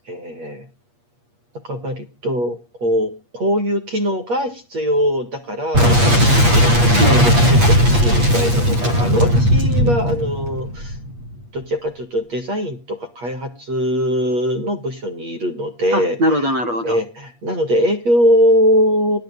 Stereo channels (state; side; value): late; left; 8.4 ms